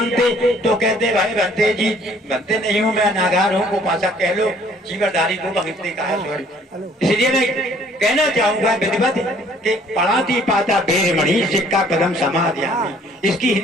तो कहते भाई भंते जी, भंते नहीं हूँ मैं, नागार हूँ, को भाषा कह लो, जीवरधारी को भंगते का है सॉरी। इसलिए मैं कहना चाहूंगा विधिवत कि पाणातिपाता भेरमणि सिक्का पदम समादयामि। इसकी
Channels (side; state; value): both; normal; correlation 0.58